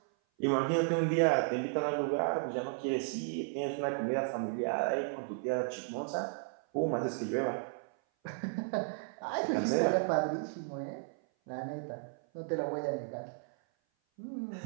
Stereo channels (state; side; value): silent; left; 55 dB below the other